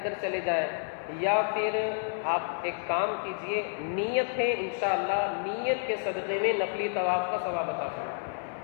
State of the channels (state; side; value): silent; right; 58 dB below the other